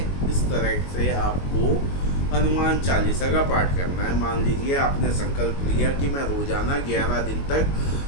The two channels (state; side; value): late; right; 22 ms